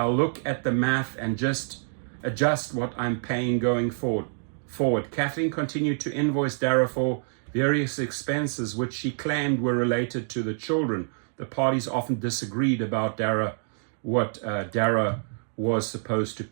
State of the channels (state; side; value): silent; left; digital silence